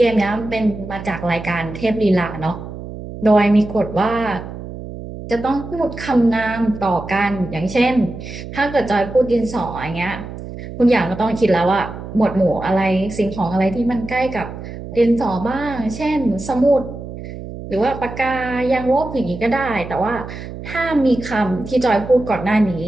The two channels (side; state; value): right; noise; hum, 11 dB below the sound